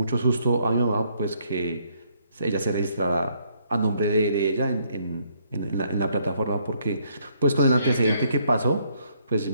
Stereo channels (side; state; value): both; inverted; correlation -0.70